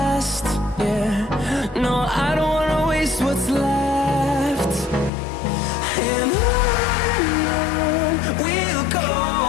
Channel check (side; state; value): right; drops out; at 5.1 s